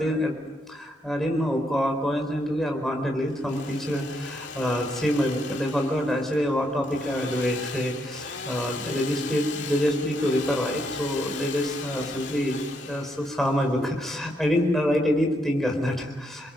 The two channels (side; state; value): both; normal; correlation 0.77